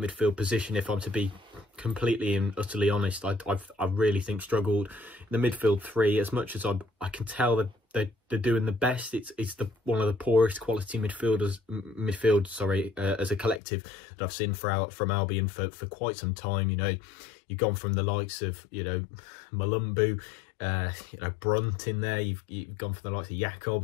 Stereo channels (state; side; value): drops out; right; at 13.6 s